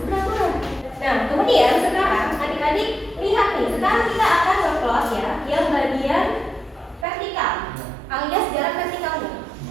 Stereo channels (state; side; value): drops out; left; at 7.1 s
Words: beraturan. Nah, kemudian sekarang adik-adik lihat nih, sekarang kita akan ngeplot ya yang bagian vertikal alias jarak vertikalnya,